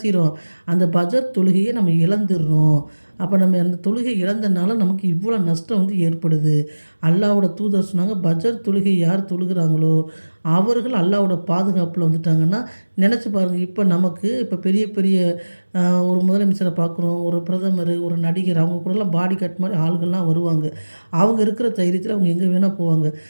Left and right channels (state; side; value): inverted; both; correlation -1.00